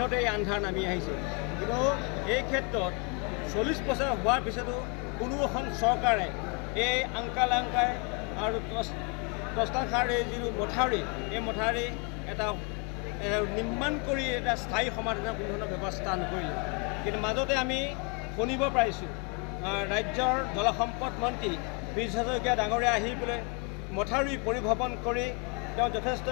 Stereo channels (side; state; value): right; quieter; 33.4 dB